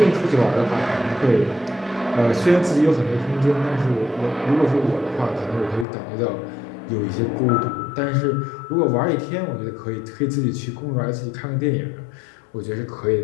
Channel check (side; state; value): right; drops out; at 5.9 s